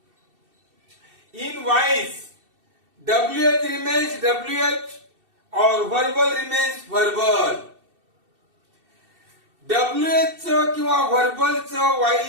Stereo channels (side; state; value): left; late; 2.7 ms